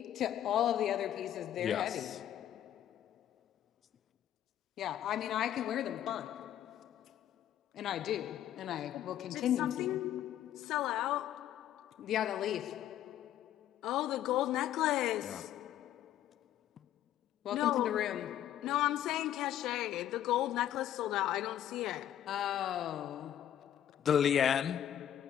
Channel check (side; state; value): right; quieter; 11.3 dB